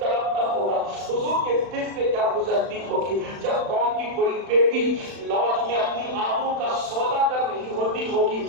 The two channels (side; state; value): left; late; 35 ms